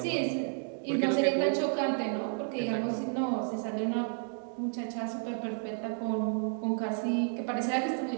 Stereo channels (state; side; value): silent; left; 57 dB below the other